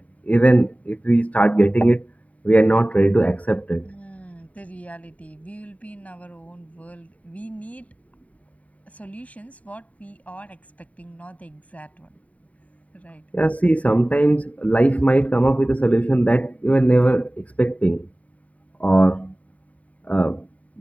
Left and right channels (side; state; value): right; late; 0.068 ms